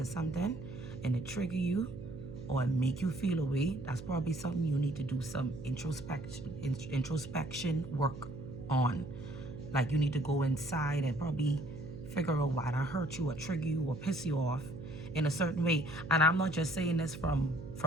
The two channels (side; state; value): right; noise; hum, 11 dB below the sound